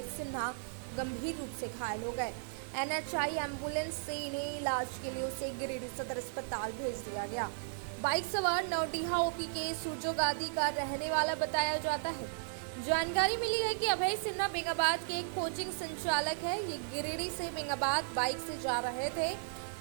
सिन्हा गंभीर रूप से घायल हो गए। NHI एम्बुलेंस से इन्हें इलाज के लिए उसे गिरिडीह सदर अस्पताल भेज दिया गया। बाइक सवार नवडीहा ओपी के सुजोगादी का रहने वाला बताया जाता है। जानकारी मिली है कि अभय सिन्हा बेंगाबाद के एक कोचिंग संचालक है। ये गिरिडीह से बेंगाबाद बाइक से जा रहे थे।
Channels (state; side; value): silent; left; digital silence